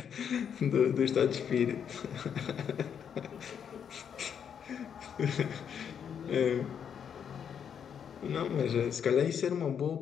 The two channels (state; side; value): quieter; right; 7.9 dB